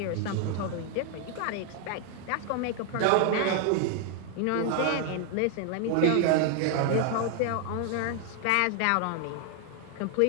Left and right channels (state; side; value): different; both; correlation 0.00